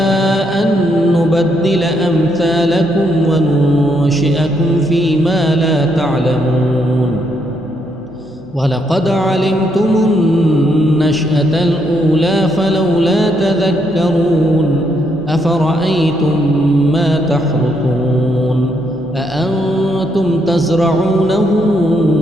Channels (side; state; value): both; normal; correlation 0.75